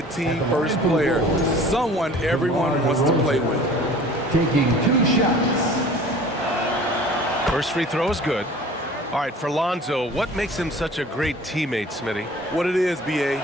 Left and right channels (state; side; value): normal; both; correlation 0.46